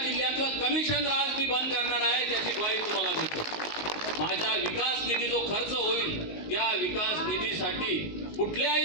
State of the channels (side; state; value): right; late; 19 ms